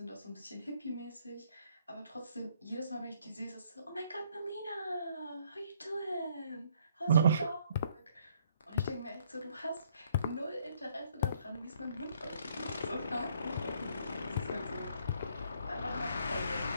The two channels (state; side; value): inverted; both; correlation -0.66